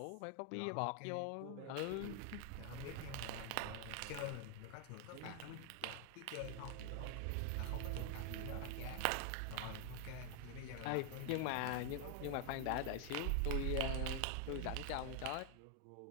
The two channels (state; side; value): different; both; correlation 0.00